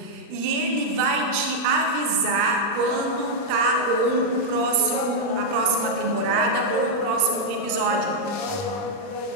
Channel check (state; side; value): late; left; 40 ms